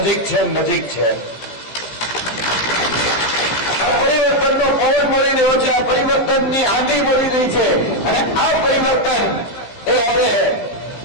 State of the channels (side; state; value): right; late; 17 ms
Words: છે, નજીક છે. આ પરિવર્તનનો પવન મળી રહ્યો છે, આ પરિવર્તનની આંધી મળી રહી છે અને આ પરિવર્તન એ હવે